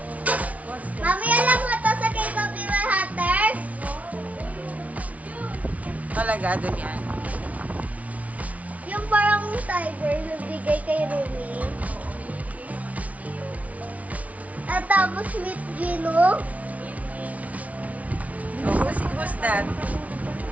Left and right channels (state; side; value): late; left; 0.068 ms